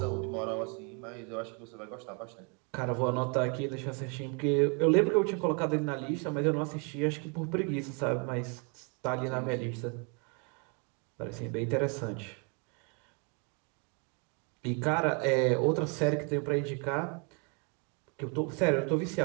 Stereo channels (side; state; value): left; quieter; 35.3 dB